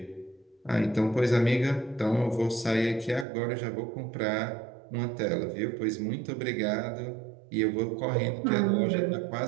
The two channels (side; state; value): left; drops out; at 3.2 s